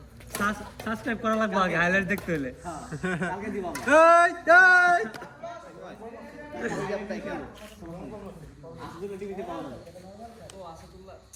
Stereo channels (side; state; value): both; identical; correlation 1.00